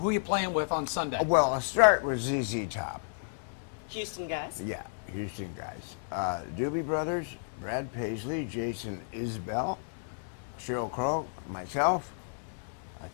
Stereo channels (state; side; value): silent; right; digital silence